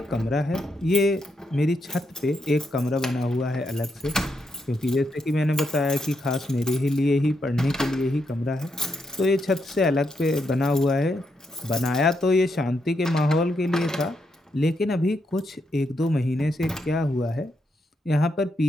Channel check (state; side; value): normal; both; correlation 0.81